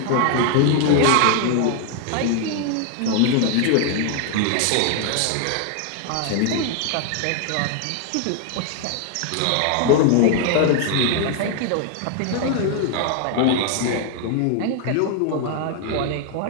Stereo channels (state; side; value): different; both; correlation 0.00